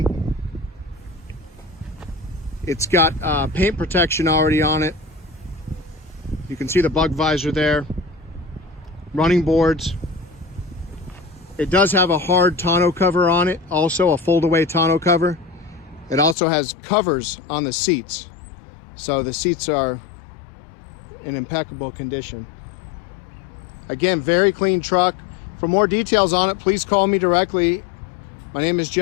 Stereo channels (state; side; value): drops out; right; at 16.4 s